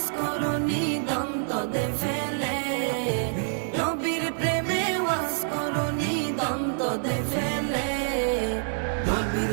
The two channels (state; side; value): silent; left; digital silence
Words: করুনি দন্তদে ফেলে, নবীর প্রেমে ওয়াজ করুনি দন্তদে ফেলে। নবীর